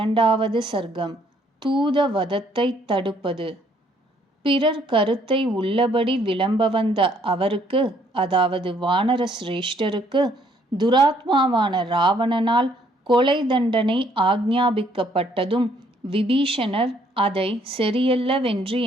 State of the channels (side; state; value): both; normal; correlation 0.66